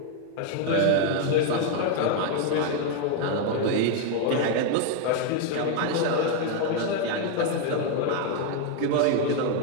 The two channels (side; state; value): both; different; correlation 0.01